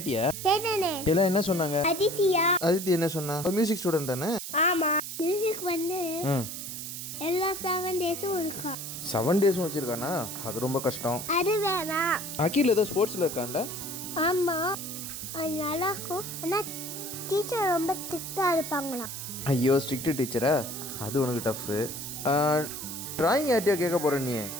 கேட்டனே. எல்லாம் என்ன சொன்னாங்க? அதித்தி என்ன சொன்னா? மியூசிக் ஸ்டூடண்ட் தானே? ஆமா. மியூசிக் எல்லா 7 டேஸும் இருக்கா. 7 டேஸும் வச்சிருக்கானா? அது ரொம்ப கஷ்டம். அது வேணா. அகில் ஏதோ ஸ்போர்ட்ஸ்ல இருக்கான்ல? ஆமா, அது நல்லா இருக்கும். ஆனா டீச்சர் ரொம்ப ஸ்ட்ரிக்டா இருப்பாங்களாம். ஐயோ, ஸ்ட்ரிக்ட் டீச்சரா? அது உனக்கு டஃப். டிராயிங் யார்ட்டையா கேட்க போறேன் நீ?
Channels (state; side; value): noise; right; hiss, 7 dB below the sound